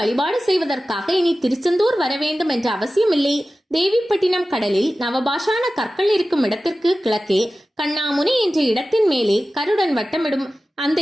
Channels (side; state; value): both; normal; correlation 0.95